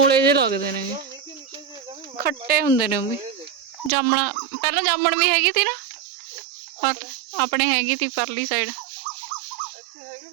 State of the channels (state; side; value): drops out; left; at 3.9 s